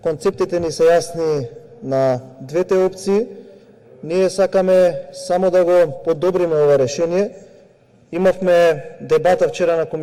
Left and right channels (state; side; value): identical; both; correlation 1.00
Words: Концептите ни се јасни на двете опции. Ние сакаме само да го подобриме ова решение. Имавме дебата вчера на